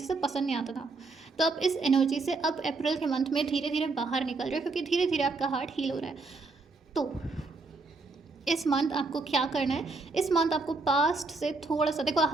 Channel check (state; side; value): quieter; left; 3.7 dB